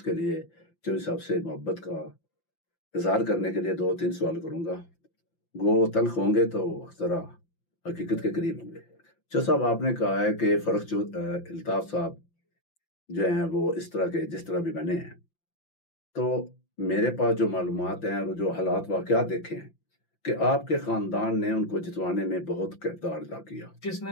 کے لیے چودھری صاحب سے محبت کا اظہار کرنے کے لیے 2-3 سوال کروں گا. وہ تلخ ہوں گے تو ذرا حقیقت کے قریب ہوں گے. چودھری صاحب آپ نے کہا ہے کہ الطاف صاحب جو ہیں وہ اس طرح کے جس طرح بھی بنے ہیں، تو میرے پاس جو معلومات ہیں اور جو حالات واقعات دیکھے ہیں کہ آپ کے خاندان نے ان کو جتوانے میں بہت کردار ادا کیا. کس نے؟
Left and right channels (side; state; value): right; late; 5.8 ms